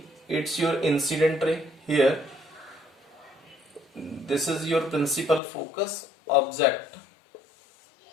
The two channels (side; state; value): right; drops out; at 5.4 s